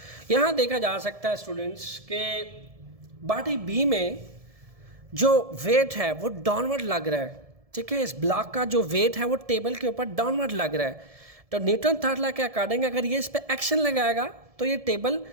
यहां देखा जा सकता है स्टूडेंट्स के बॉडी बी में जो वेट है वो डाउनवर्ड लग रहा है, ठीक है। इस ब्लॉक का जो वेट है वो टेबल के ऊपर डाउनवर्ड लग रहा है, तो न्यूटन थर्ड लॉ के अकॉर्डिंग अगर ये इस पर एक्शन लगाएगा तो ये टेबल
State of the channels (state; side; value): late; left; 1.7 ms